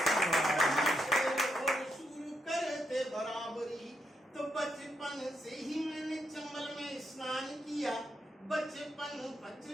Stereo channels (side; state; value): both; normal; correlation 0.80